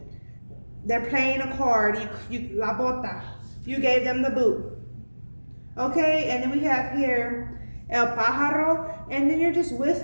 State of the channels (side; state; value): both; inverted; correlation -1.00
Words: They're playing a card. You la bota. You gave them the boot. Okay, and then we have here El Pájaro, and then you're just